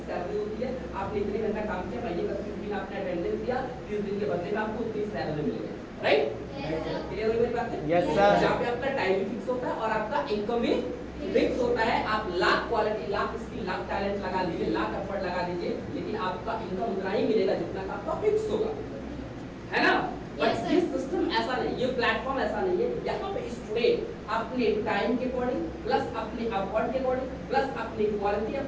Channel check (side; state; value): both; identical; correlation 1.00